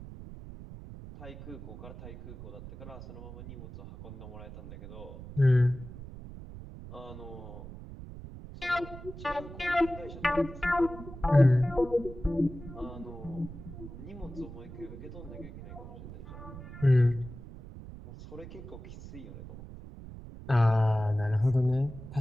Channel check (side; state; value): right; noise; rumble, 13 dB below the sound